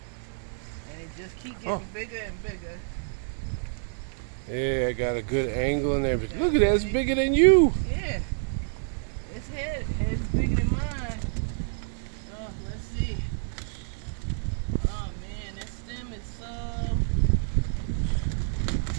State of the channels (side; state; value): left; silent; 59 dB below the other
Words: And it just keep Oh. getting bigger and bigger. Yeah, I got a good angle and everything. Look at that, it's bigger than you. Yeah. Its head's bigger than mine. Oh, let's see. Oh man, that stem is so.